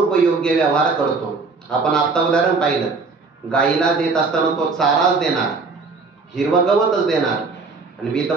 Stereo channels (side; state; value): left; quieter; 4.2 dB